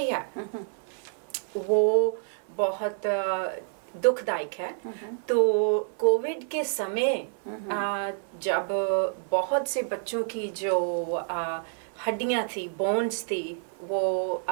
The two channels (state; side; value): silent; left; 56 dB below the other